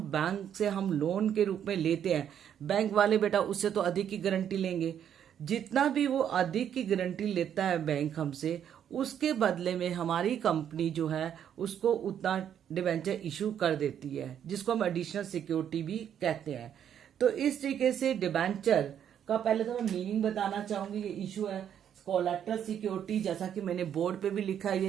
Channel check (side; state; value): left; quieter; 9.3 dB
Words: बैंक से हम लोन के रूप में लेते हैं, बैंक वाले बेटा उससे तो अधिक की गारंटी लेंगे। जितना भी वो अधिक की गारंटी लेता है बैंक हमसे, उसके बदले में हमारी कंपनी जो है उसको उतना डिवेंचर इशू कर देती है, जिसको हम एडिशनल सिक्योरिटी भी कहते हैं। तो इस तरीके से डिवेंचर का पहले तो मैं मीनिंग बताना चाहूंगी। ये इशू है कोलैटरल सिक्योरिटी, जैसा कि मैंने बोर्ड पे भी लिखा है,